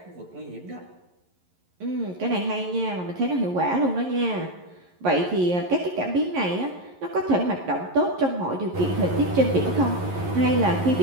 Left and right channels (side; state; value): left; late; 11 ms